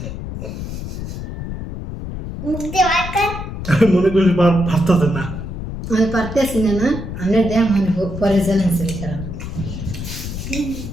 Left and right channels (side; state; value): left; noise; rumble, 7 dB below the sound